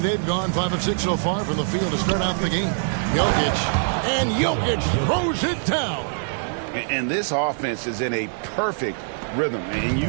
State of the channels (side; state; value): left; silent; digital silence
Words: gone 5 of 6 so far from the field to start out the game. Jokic throws it down. And this offense is in a perfect rhythm, and you